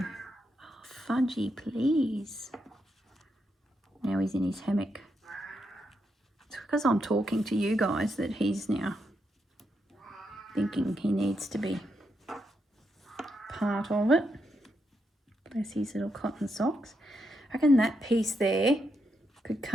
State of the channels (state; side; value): normal; both; correlation 0.82